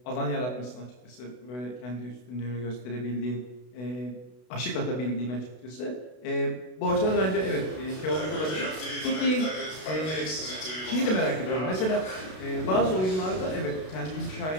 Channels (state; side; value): late; right; 32 ms